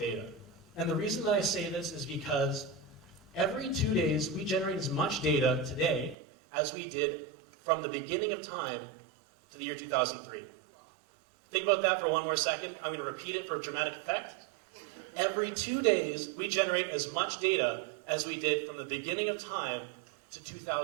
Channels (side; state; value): left; drops out; at 6.2 s